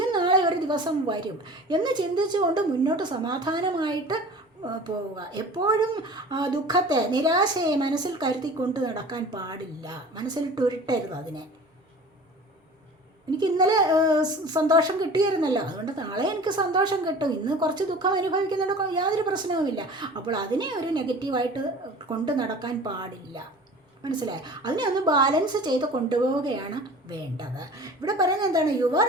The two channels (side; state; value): both; normal; correlation 0.41